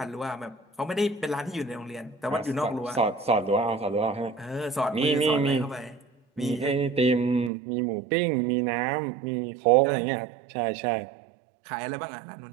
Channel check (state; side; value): drops out; left; at 7.5 s